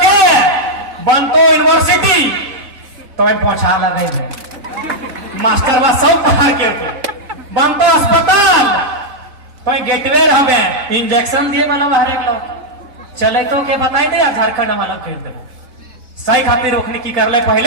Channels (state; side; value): late; left; 4.0 ms